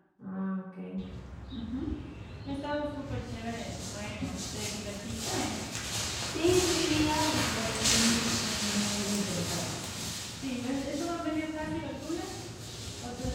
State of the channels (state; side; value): identical; both; correlation 1.00